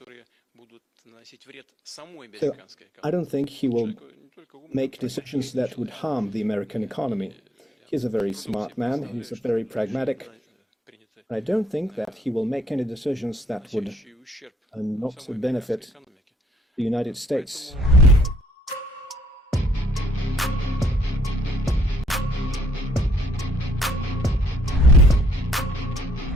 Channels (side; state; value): both; normal; correlation 0.66